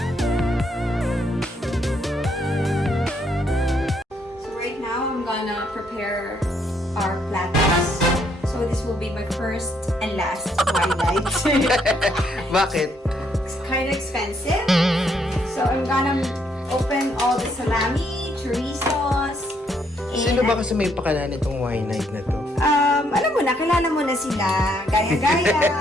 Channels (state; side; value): normal; both; correlation 0.72